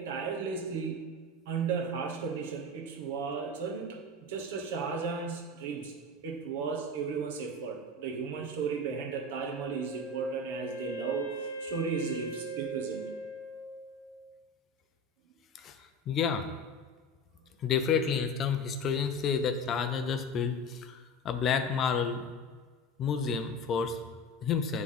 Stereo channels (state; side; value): normal; both; correlation 0.28